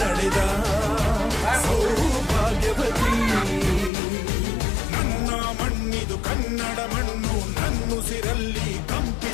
ಸೌಭಾಗ್ಯವತಿ ನನ್ನ ಮಣ್ಣಿದು ಕನ್ನಡ ಮಣ್ಣು ನನ್ನುಸಿರಲ್ಲಿ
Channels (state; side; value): drops out; right; at 3.9 s